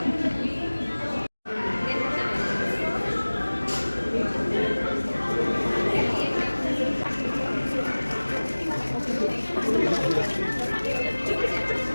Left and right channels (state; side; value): inverted; both; correlation -1.00